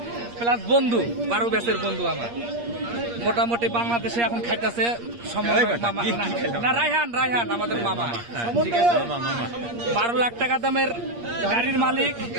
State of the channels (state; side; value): late; left; 8.5 ms